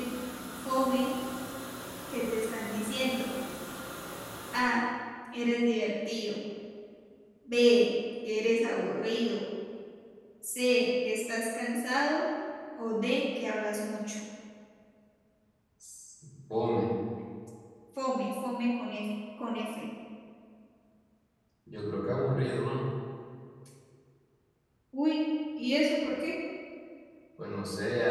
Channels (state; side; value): identical; both; correlation 1.00